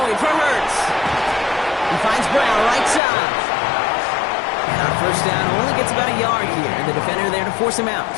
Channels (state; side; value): drops out; right; at 3.0 s